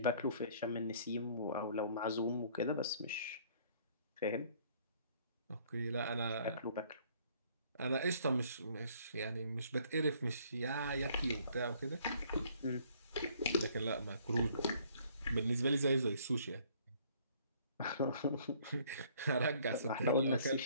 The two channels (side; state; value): both; inverted; correlation -0.60